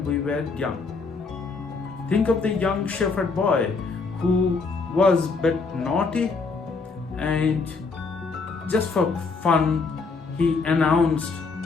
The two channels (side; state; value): right; quieter; 4.4 dB